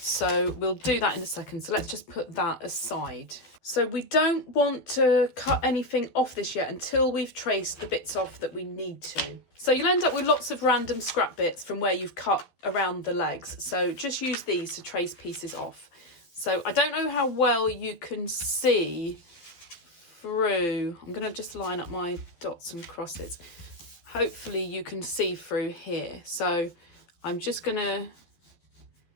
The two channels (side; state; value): right; late; 12 ms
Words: we'll do that in a second. So let's just put that aside. So we don't want to cut anything off this yet until we've traced the bits off that we need to. So you'll end up with lots of random scrap bits from where you've cut around the legs. So just use these to trace pieces off. So I don't know how well you can see through. I'm going to just line up my dots and crosses. Hopefully you can see through here. So I'm just going to